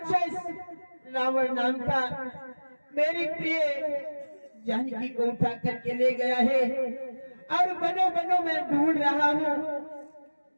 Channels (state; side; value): inverted; both; correlation -1.00